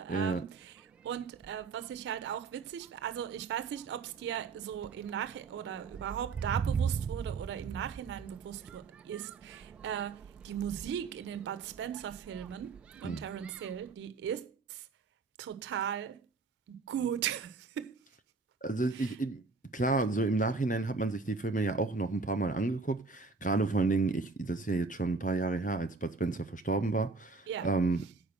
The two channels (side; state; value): left; quieter; 4.2 dB